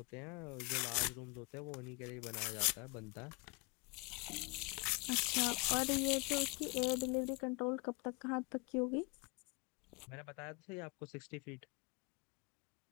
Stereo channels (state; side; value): quieter; right; 29.7 dB